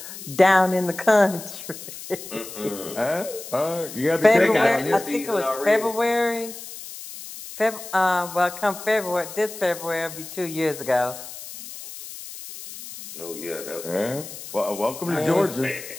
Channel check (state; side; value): noise; left; hiss, 12 dB below the sound